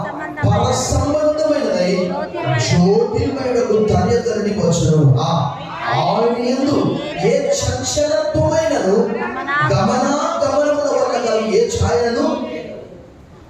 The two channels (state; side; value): identical; both; correlation 1.00